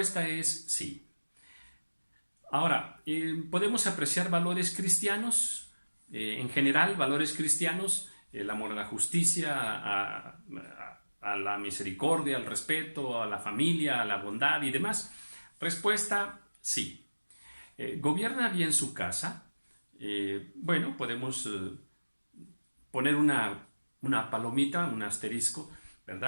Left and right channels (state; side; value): inverted; both; correlation -1.00